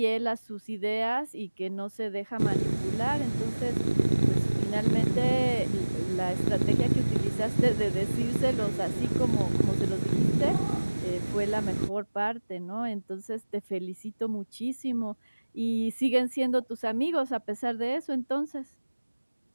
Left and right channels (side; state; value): both; inverted; correlation -1.00